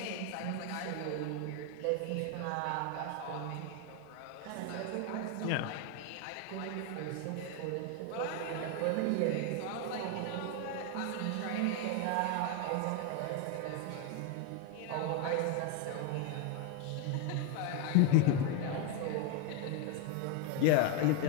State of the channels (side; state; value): both; different; correlation 0.01